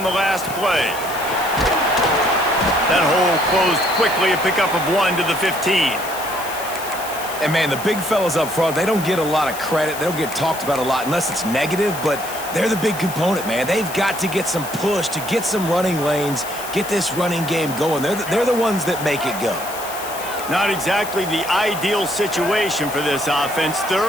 the last play. That hole closed quickly, a pickup of 1 to the 15. And, man, the big fellas up front, they don't get a lot of credit. They don't get talked about a lot unless it's negative, but they're the big component, man. They've got to get some push, to get some running lanes, get this running game going. They're the ones that make it go. Not exactly the ideal situation for this offense.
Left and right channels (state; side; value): noise; left; hiss, 12 dB below the sound